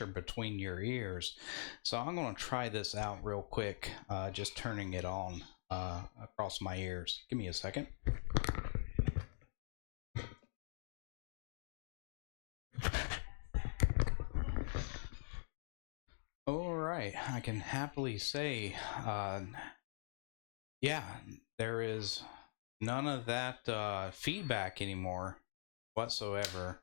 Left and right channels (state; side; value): silent; right; digital silence